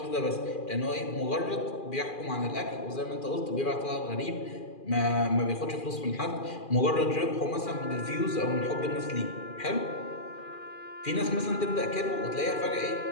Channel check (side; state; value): right; late; 2.4 ms